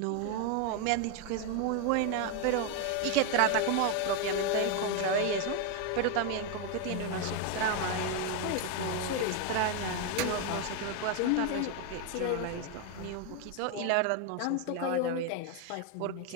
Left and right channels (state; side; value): different; both; correlation 0.01